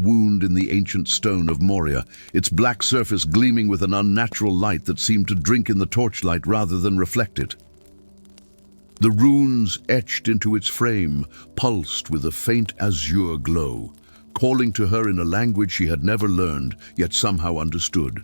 in the ancient stone of Moria, its black surface gleaming with an unnatural light that seemed to drink in the torchlight rather than reflect it. The runes etched into its frame pulsed with a faint azure glow, calling to her in a language she had never learned, yet somehow understood.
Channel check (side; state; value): both; inverted; correlation -1.00